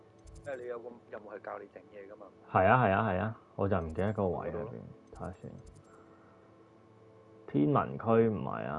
因為你有個任務係教你整嘢噶嘛。係啊係啊係啊，我就唔記得個位喺邊，睇下先。天文區唔係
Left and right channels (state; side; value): identical; both; correlation 1.00